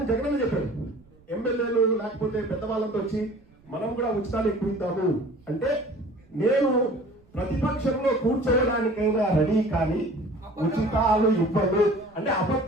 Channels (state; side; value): noise; right; rumble, 29 dB below the sound